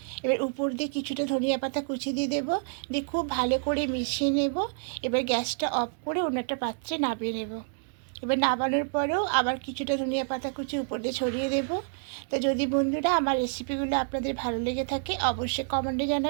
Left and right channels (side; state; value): left; silent; digital silence